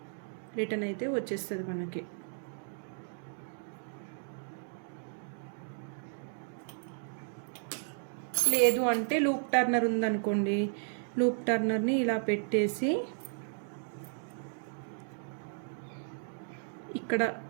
రిటర్న్ అయితే వచ్చేస్తుంది మనకి. లేదు అంటే లూప్ టర్నర్ ఉందనుకోండి, లూప్ టర్నర్ని ఇలా పెట్టేసి ఇక్కడ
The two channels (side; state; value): left; silent; digital silence